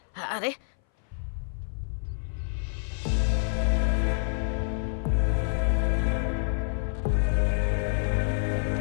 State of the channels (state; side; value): silent; right; 58 dB below the other